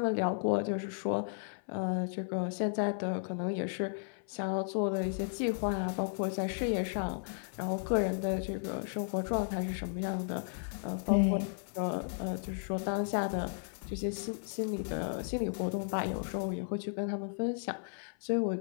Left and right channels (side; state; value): right; silent; 55 dB below the other